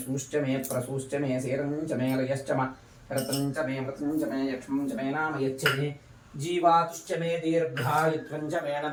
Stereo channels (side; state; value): both; identical; correlation 1.00